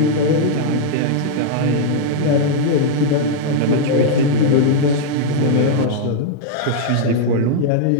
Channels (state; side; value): different; both; correlation -0.01